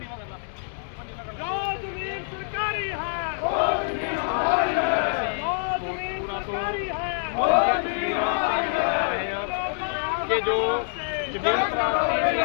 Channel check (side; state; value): right; silent; 59 dB below the other